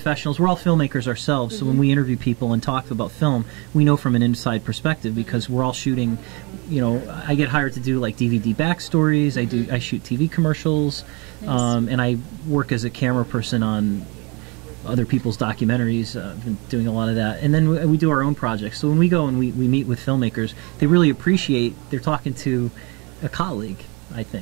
We're all filmmakers ourselves. So when we interview people and talk about film, we know from an inside perspective because we're all shooting, you know, I get hired to do like DVD backstories. I shoot TV commercials, Nice. and I work as a camera person on other people's documentaries. I've been doing a lot of that. And then we do our own projects. So when we go and we meet with filmmakers, they really appreciate, they're talking to a colleague, I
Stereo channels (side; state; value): left; quieter; 29.5 dB